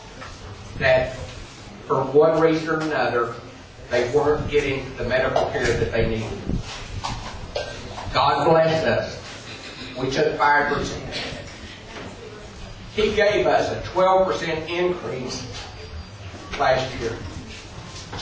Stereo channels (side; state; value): both; identical; correlation 1.00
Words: that for one reason or another, they weren't getting the medical care that they needed. God blessed us. We took 5%. He gave us a 12% increase last year.